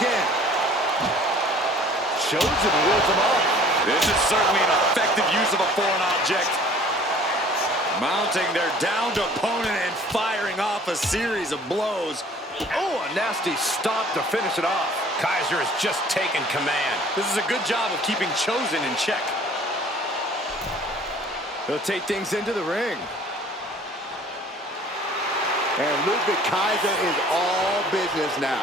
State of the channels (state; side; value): normal; both; correlation 0.52